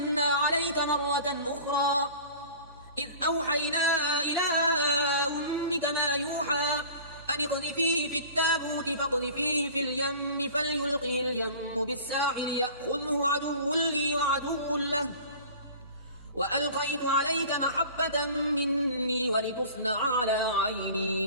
عليك مرة أخرى إذ أوحينا إلى أمك ما يوحى أن اقذفيه في التابوت فاقذفيه في اليم فليلقه اليم بالساحل يأخذه عدو لي وعدو له وألقيت عليك محبة مني ولتصنع على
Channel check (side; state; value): both; inverted; correlation -0.42